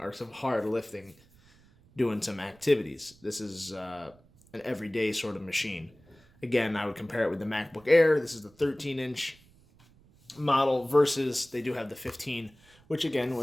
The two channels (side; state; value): right; noise; rumble, 28 dB below the sound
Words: some hard lifting, doing some activities. This is an everyday sort of machine. Again, I would compare it with the MacBook Air. This is the 13-inch model versus they do have the 15, which again